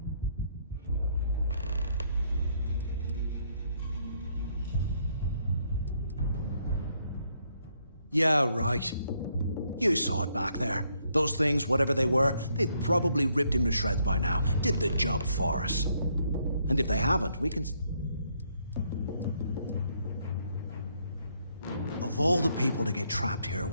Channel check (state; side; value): inverted; both; correlation -0.72